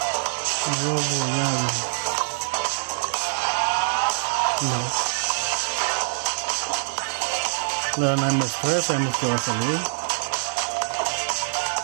No. La MS3 sabemos que va a salir.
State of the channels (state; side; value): silent; left; digital silence